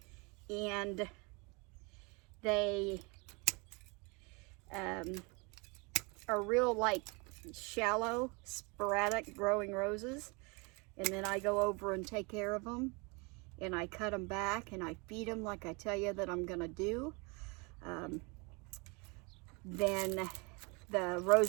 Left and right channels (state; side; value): quieter; left; 29.5 dB